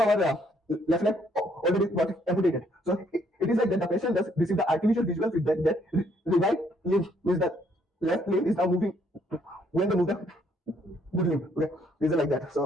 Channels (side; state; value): both; normal; correlation 0.68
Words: our left leg already got amputated. So it is like that the patient does receive the artificial visual feedback that the right limb means that left limb is now moving when they move the good limb. Okay, this is like that.